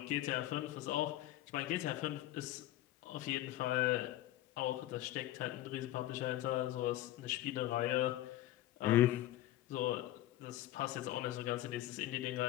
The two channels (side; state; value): right; quieter; 14.7 dB